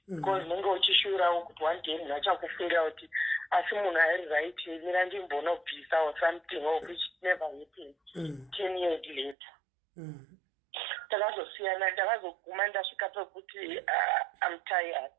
because nenge uchishurawo kuti one day munhu achakufungira kuti asi munhu airi right mira ndimbonobvisa or something of which never happened 10 years later. Takazosiyana, ndakazoguma ndasvika pekuti I'm tired.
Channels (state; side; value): drops out; left; at 9.3 s